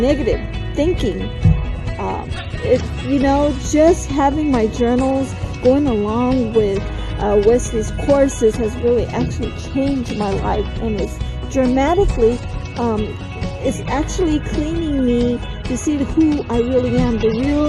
thinking. Just having my journals going along with Wesley's courses has really actually changed my life, and it's dramatically it's actually cleaning me to see who I really am, the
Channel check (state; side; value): identical; both; correlation 1.00